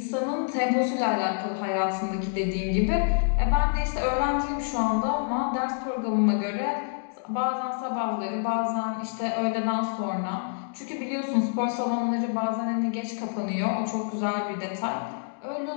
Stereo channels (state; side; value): silent; right; digital silence